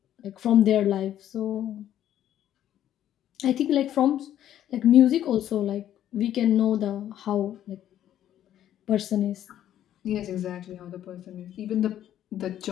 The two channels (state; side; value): quieter; right; 11.4 dB